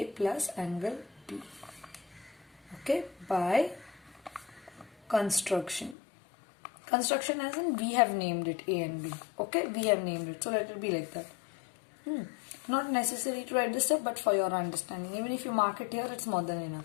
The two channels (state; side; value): drops out; right; at 6.0 s